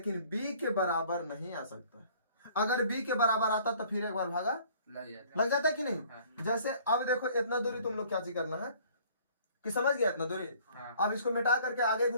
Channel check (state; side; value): inverted; both; correlation -0.55